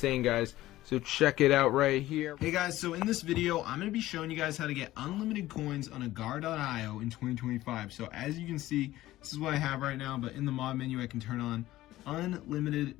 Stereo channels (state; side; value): quieter; right; 15.9 dB